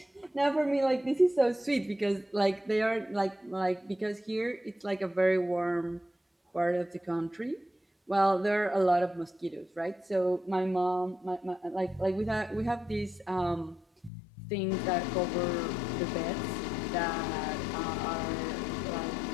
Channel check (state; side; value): drops out; right; at 14.1 s